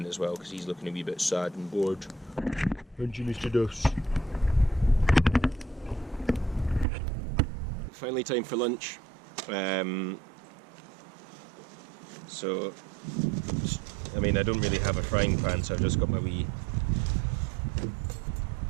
as well because he's looking a wee bit sad and bored. Aren't you, Mr. Duffs? Finally time for lunch. So, I mean, I don't really have a frying pan, so I've just got my wee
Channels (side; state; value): left; drops out; at 6.9 s